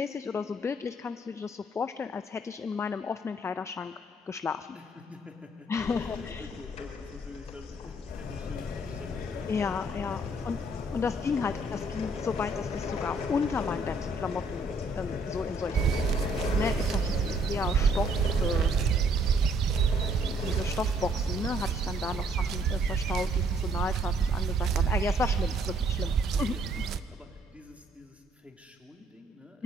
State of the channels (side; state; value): both; normal; correlation 0.65